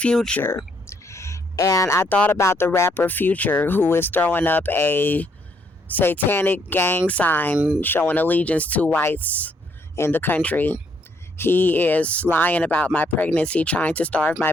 And I thought about the rapper Future, who is throwing up a satanic gang sign showing allegiance to whites in the country. He is lying about my pregnancy, trying to starve my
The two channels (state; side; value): normal; both; correlation 0.70